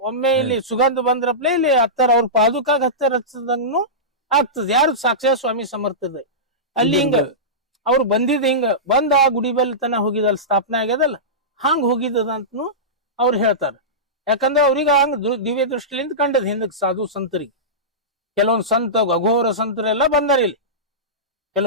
ಒಮ್ಮೆ ಇಲ್ಲಿ ಸುಗಂಧ ಬಂದ್ರಪ್ಲೆ ಇಲ್ಲಿ ಹತ್ತರ ಅವ್ರ ಪಾದುಕಾಗ ಹತ್ತರ ಹಚ್ಚದಂಗೂ ಆಗ್ತದ. ಯಾರು ಸಾಕ್ಷಾತ್ ಸ್ವಾಮಿ ಸಮರ್ಥದ ಅಲ್ಲಿ ಹಿಂಗ ಅವ್ರು ಬಂದಿದ್ ಹಿಂಗ ಬಂದ ಆ ಗುಡಿ ಬಲ್ ತನ ಹೋಗಿದಲ್ ಸ್ಥಾಪನೆ ಆಗ್ಯದಲ್ಲ ಹಂಗ ಹೋಗಿದ್ದದಂತನು ಅವ್ರು ಹೇಳ್ತಾರ. ಯಾಕಂದ್ರೆ ಅವ್ರಿಗೆ ಹಂಗ ದಿವ್ಯ ದೃಷ್ಟಿಲಿಂದ ಕಂಡದ್ ಹಿಂದಕ್ ಸಾಧು ಸಂತರಿಗೆ. ಕೆಲವೊಂದ್ ಸಂತ ಅಘೋರ ಸಂತರೆಲ್ಲ ಬಂದಾರ ಇಲ್ಲಿ.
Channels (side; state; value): both; normal; correlation -0.17